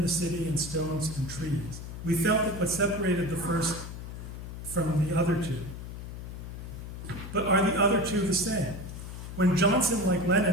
the city and stones and trees. We felt that what separated the first from the other two. But are the other two the same? When Johnson, like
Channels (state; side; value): noise; left; hum, 9 dB below the sound